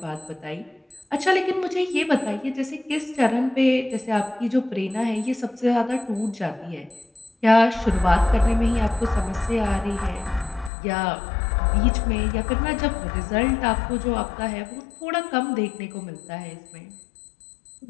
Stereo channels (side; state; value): right; drops out; at 10.7 s